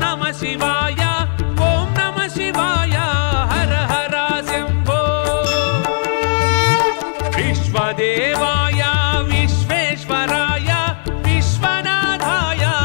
నమః శివాయ ఓం నమః శివాయ హర హర శంభో విశ్వదేవాయ విశ్వేశ్వరాయ విశ్వనాథాయ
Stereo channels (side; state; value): right; silent; digital silence